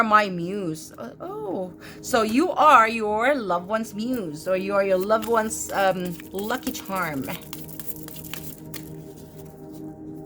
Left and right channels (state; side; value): identical; both; correlation 1.00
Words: my muse. Oh, so you are your loved one's muse, or you are your loved one's lucky charm.